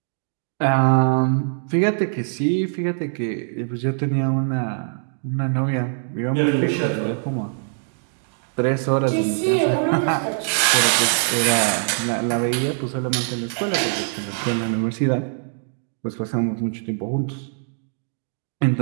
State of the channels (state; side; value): silent; left; digital silence